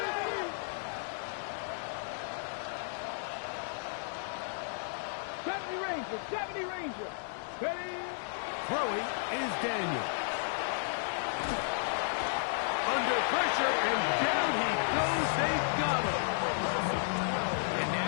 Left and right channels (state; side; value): silent; right; digital silence